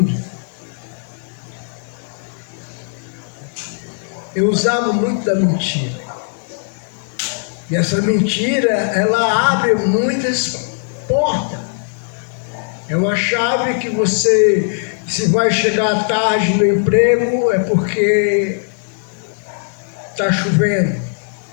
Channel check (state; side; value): silent; right; digital silence